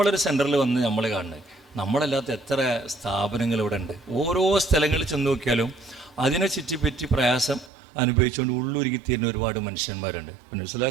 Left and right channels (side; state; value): left; drops out; at 7.7 s